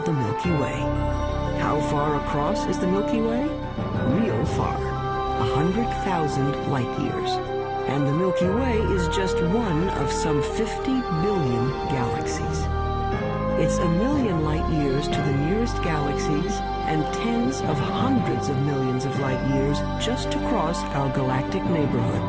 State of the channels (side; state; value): both; identical; correlation 1.00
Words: Milky Way. How far across is the Milky Way? Real far, 100,000 light years. And the Milky Way is just one of some 50 billion galaxies. It's 1 million light years to the nearest galaxies and tens of hundreds of millions of light years just to cross our galactic neighborhood.